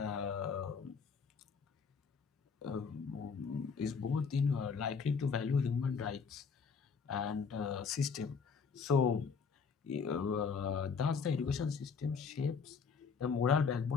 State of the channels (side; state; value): right; quieter; 5.7 dB